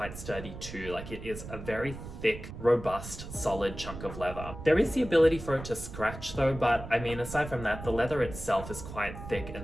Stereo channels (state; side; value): noise; right; rumble, 11 dB below the sound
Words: sturdy too. Like, it is a very thick, robust, solid chunk of leather. There is the ability for it to scratch though, but I mean, aside from that, the leather itself is quite thick